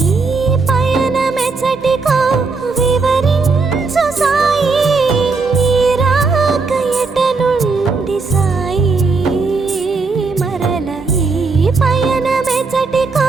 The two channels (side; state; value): left; quieter; 4.2 dB